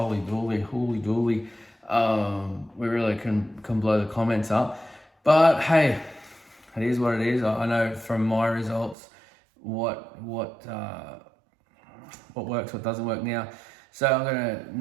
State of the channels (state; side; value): drops out; left; at 9.0 s